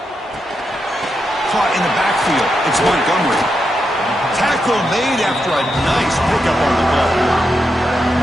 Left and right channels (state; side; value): normal; both; correlation 0.85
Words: Caught in the backfield. It's Montgomery. Tackle made after a nice pickup on the ball.